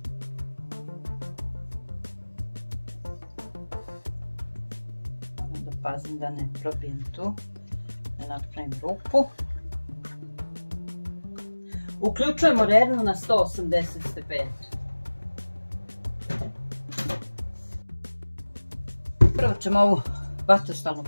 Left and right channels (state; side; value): inverted; both; correlation -1.00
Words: Moram da pazim da ne probijem tu. Napravim rupu. Uključujemo rernu na 180 stepeni. Prvo ćemo ovu vatrostalnu